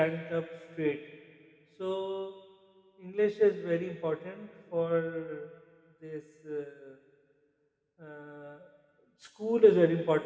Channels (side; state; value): both; identical; correlation 1.00